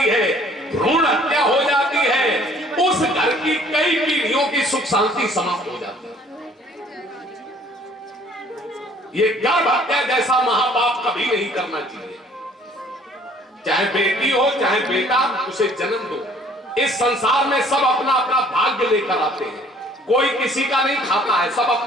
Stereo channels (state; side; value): normal; both; correlation 0.56